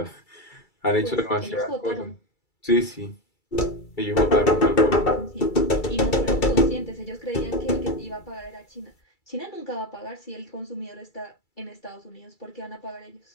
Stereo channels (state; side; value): late; right; 2.3 ms